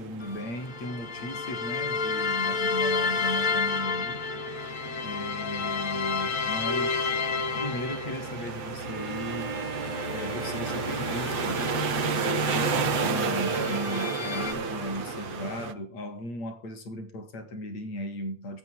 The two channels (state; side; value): late; right; 8.4 ms